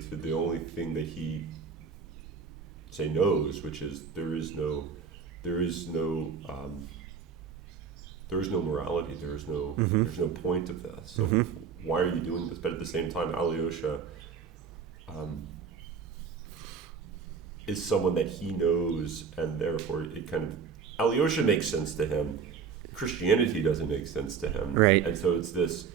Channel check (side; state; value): left; quieter; 6.2 dB